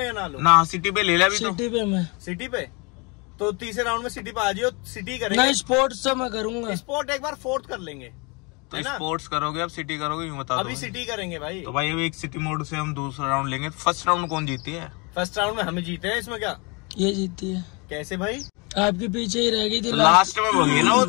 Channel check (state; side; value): quieter; right; 29.9 dB